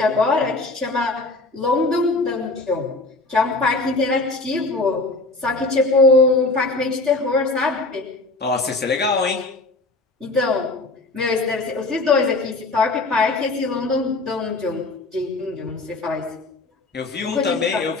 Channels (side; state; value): right; quieter; 3.2 dB